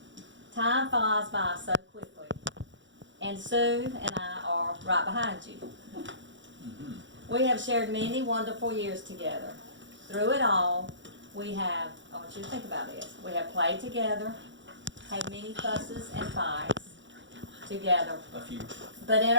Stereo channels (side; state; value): left; late; 0.54 ms